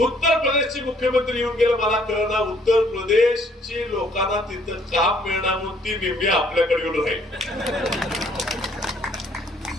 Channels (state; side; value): normal; both; correlation 0.63